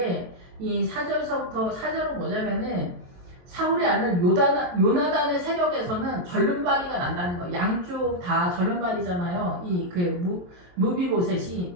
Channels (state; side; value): late; left; 23 ms